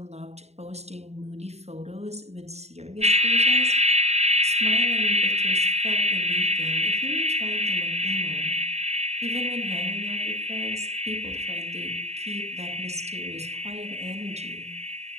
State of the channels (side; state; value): left; late; 0.31 ms